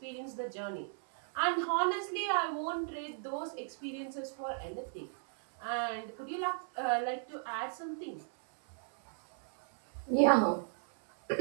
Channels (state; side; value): silent; left; 54 dB below the other